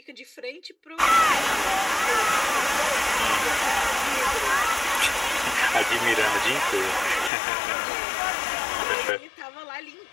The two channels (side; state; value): right; drops out; at 7.3 s